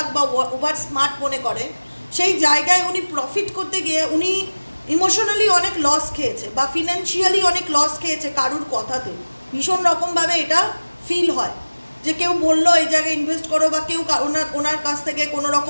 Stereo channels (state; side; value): inverted; both; correlation -1.00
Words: বা ওভার স্মার্ট মনে করে, সেই জায়গায় উনি প্রফিট করতে গিয়ে উনি ইমোশনালি অনেক লস খেয়েছে বা ফিনান্সিয়ালি অনেক লস খেয়েছে কারুর কথাতে। ভীষণ রকমভাবে এটা ফিল হয় যে কেউ বললো এই জায়গায় ইনভেস্ট করো, বা কেউ ওনার কাছ থেকে কোনো